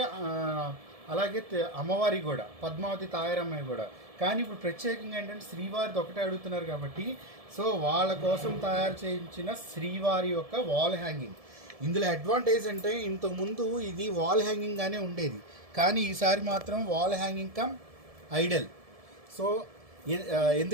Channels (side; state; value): left; late; 1.7 ms